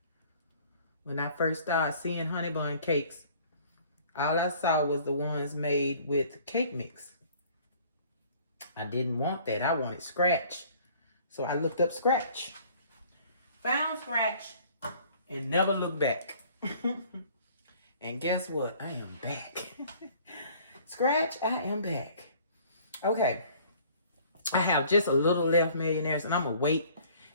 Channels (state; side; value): inverted; both; correlation -0.54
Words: When I first started seeing Honeybun cakes, all I saw was the ones made with cake mix. I didn't want that. I wanted scratch. So I looked up scratch. Found scratch and never looked back. And guess what? I am back. Scratch, I am back. Okay. I have just a little left, millionaires, and I'm going to wait